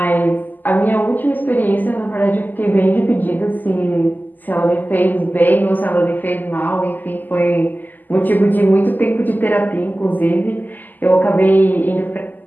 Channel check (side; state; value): right; late; 0.086 ms